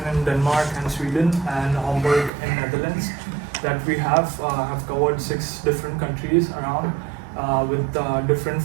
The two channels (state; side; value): drops out; left; at 2.3 s